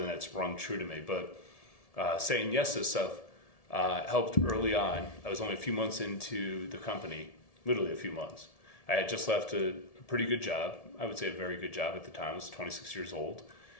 that's rung true to me. But saying yes to stuff helped early on. I was only a few months into the company, literally a few months. I had just left a pretty good job. I would say a very good job at the time. I was 26 years old.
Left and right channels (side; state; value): right; late; 1.7 ms